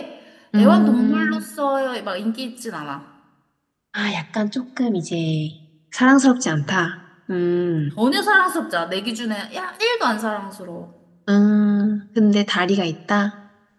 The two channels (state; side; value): identical; both; correlation 1.00